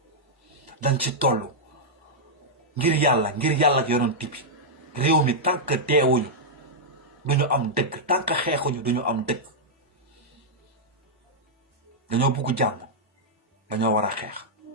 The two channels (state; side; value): normal; both; correlation -0.07